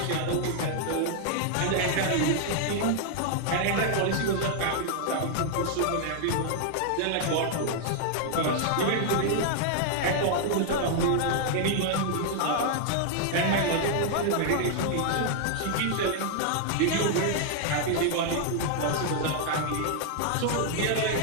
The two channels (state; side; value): different; both; correlation 0.00